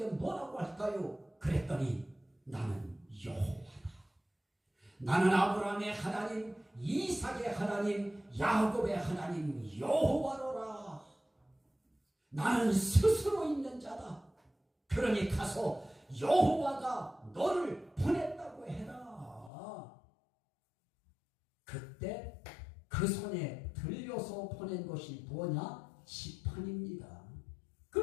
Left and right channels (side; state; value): right; drops out; at 19.5 s